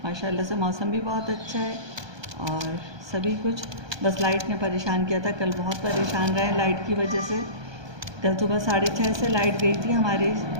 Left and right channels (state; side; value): late; left; 1.2 ms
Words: माशाल्लाह से मौसम भी बहुत अच्छा है और सभी कुछ। बस लाइट ने परेशान किया था, कल बहुत परेशान रहे लाइट की वजह से। कल सुबह 6:30 से लाइट गई थी हमारी